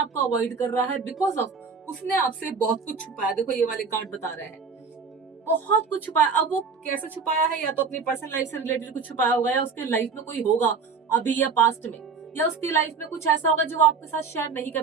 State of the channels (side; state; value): left; quieter; 5.2 dB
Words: अवॉइड कर रहा है, बिकॉज ऑफ उसने आपसे बहुत कुछ छुपाया। देखो ये वाले कार्ड बता रहे हैं, बहुत कुछ छुपाया। अब वो कैसे छुपाया है, या तो अपनी पर्सनल लाइफ से रिलेटेड कुछ छुपाया होगा, या उसके लाइफ में कोई होगा अभी या पास्ट में, या उसकी लाइफ में कुछ ऐसा होगा जो वो आपके साथ शेयर नहीं